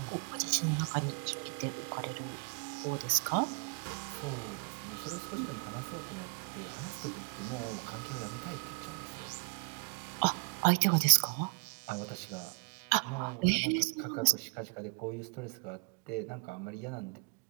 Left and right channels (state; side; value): quieter; left; 34.9 dB